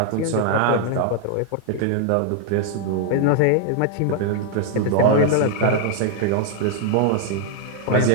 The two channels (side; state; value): both; different; correlation 0.00